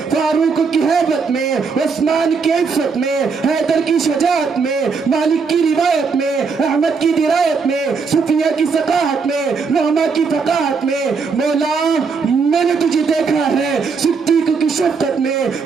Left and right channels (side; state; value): left; quieter; 5.1 dB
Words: فاروق کی ہیبت میں، عثمان کی عفت میں، حیدر کی شجاعت میں، مالک کی روایت میں، احمد کی درایت میں، صفیہ کی ثقافت میں، نعمہ کی فقاہت میں، مولا میں نے تجھے دیکھا ہے صدیق کی شفقت میں،